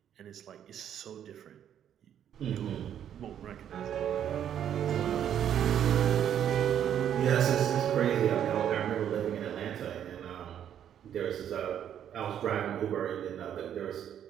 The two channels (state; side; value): quieter; left; 9.7 dB